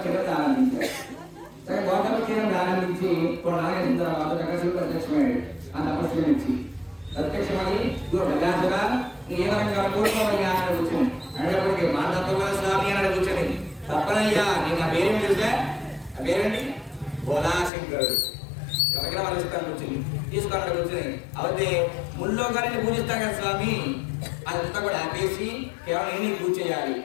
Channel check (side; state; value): right; drops out; at 17.7 s